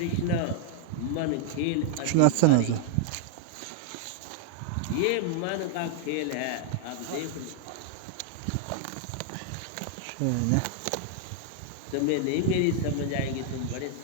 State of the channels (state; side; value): different; both; correlation -0.01